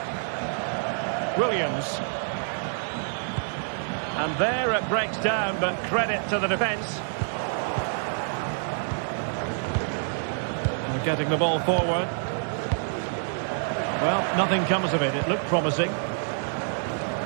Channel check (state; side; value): silent; left; 60 dB below the other